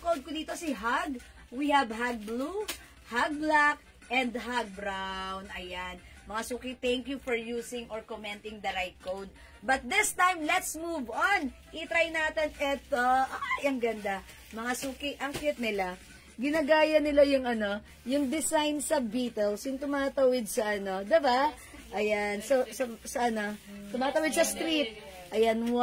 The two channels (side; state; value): both; identical; correlation 1.00